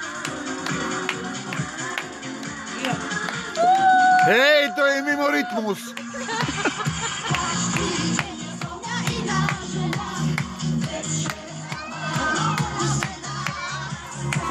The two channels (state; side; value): identical; both; correlation 1.00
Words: Hej, to je mimo rytmus.